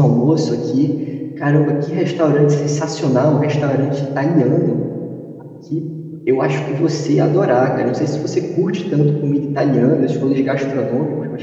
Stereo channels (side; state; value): both; identical; correlation 1.00